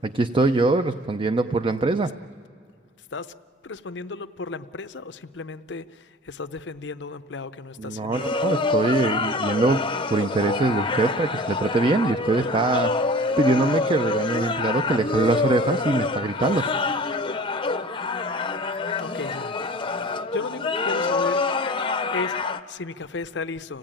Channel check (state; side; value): normal; both; correlation 0.43